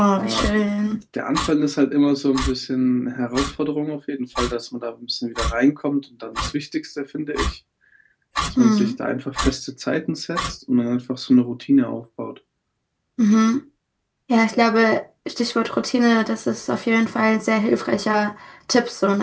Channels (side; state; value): both; identical; correlation 1.00